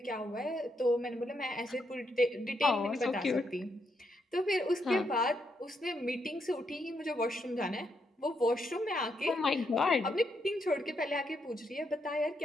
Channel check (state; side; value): normal; both; correlation 0.79